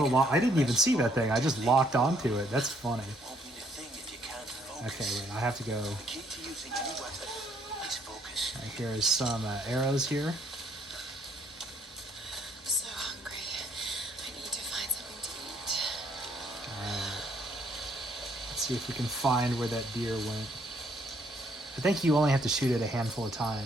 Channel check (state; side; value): normal; both; correlation 0.67